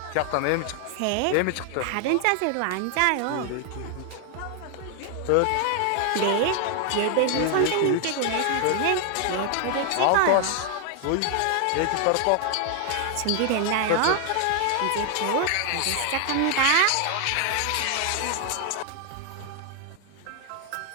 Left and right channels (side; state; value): both; different; correlation 0.00